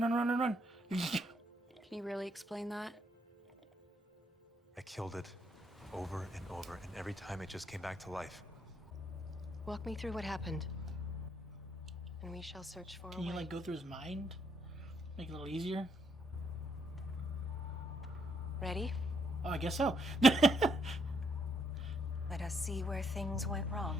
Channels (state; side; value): normal; both; correlation 0.73